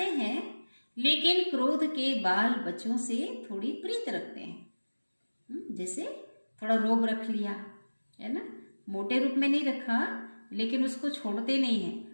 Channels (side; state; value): both; inverted; correlation -1.00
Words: हैं, लेकिन क्रोध के बाल बच्चों से थोड़ी प्रीत रखते हैं। जैसे थोड़ा रोब रख लिया है ना, मोटे रूप में नहीं रखा, लेकिन उसको छोड़ते नहीं है,